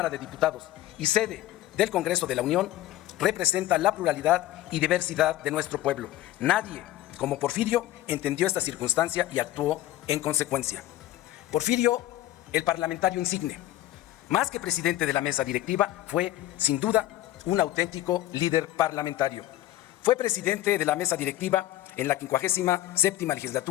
de Diputados y sede del Congreso de la Unión, representa la pluralidad y diversidad de nuestro pueblo. Nadie, como Porfirio, entendió esta circunstancia y actuó en consecuencia. Porfirio, el parlamentario insigne, más que presidente de la mesa directiva, fue, sin duda, un auténtico líder parlamentario. Fue presidente de la mesa directiva en la 57ª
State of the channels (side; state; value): right; quieter; 14.8 dB